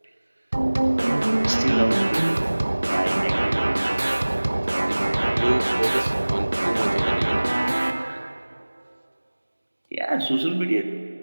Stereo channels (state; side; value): inverted; both; correlation -1.00